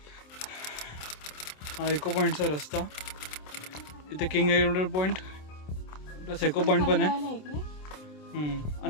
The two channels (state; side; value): late; right; 27 ms